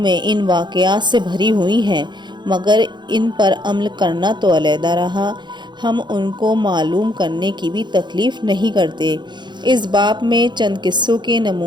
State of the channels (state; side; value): late; left; 0.22 ms